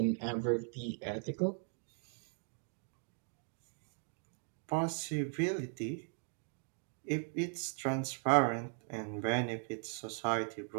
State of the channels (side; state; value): left; silent; 52 dB below the other